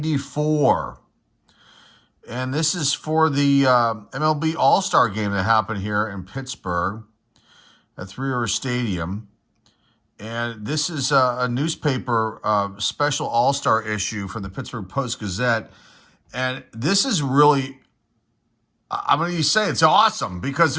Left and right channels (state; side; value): identical; both; correlation 1.00